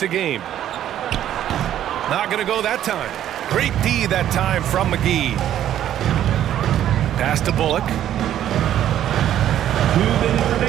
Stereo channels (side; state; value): left; quieter; 11.4 dB